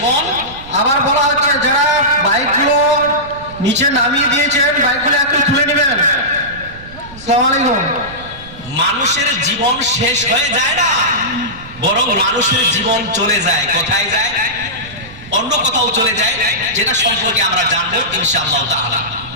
আবার বলা হচ্ছে যারা বাইকগুলো নিচে নামিয়ে দিয়েছেন বাইকগুলো একটু তুলে নেবেন। আসসালামু আলাইকুম। মানুষের জীবন শেষ হয়ে যায় না, বরং মানুষের জীবন চলে যায়। কোথায় যায়? অন্য কোথাও চলে যায়, যেটা সম্পর্কে আমরা জানবো ইনশাআল্লাহ তাআলা।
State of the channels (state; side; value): noise; right; rumble, 17 dB below the sound